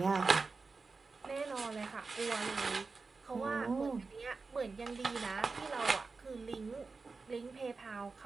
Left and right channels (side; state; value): left; quieter; 4.2 dB